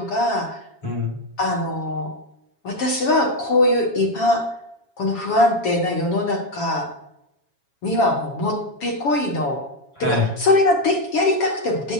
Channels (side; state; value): right; late; 7.2 ms